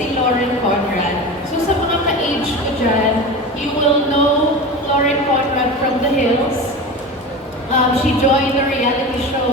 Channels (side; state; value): both; normal; correlation 0.28